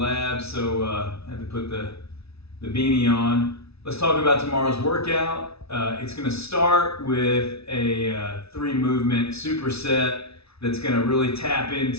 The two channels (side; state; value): right; late; 0.79 ms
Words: so I had to put the beanie on. Let's talk about tomorrow's workout. It's going to start with a 3-movement superset that's going to really tap